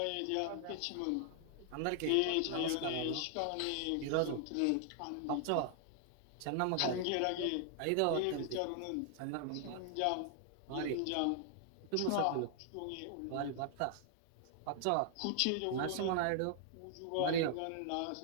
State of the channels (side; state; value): both; different; correlation 0.00